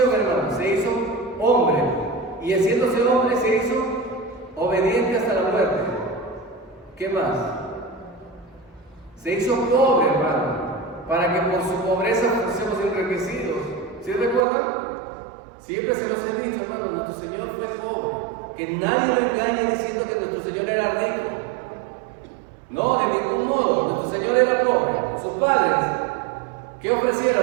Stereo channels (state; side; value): drops out; left; at 14.4 s